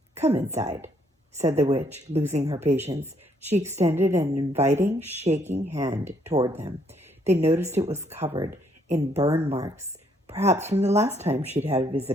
Come inside, said the witch, losing her patience. She extended an inviting, shaking hand toward them. They noticed it was covered in burn marks, perhaps from the last time she'd had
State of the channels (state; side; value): normal; both; correlation 0.69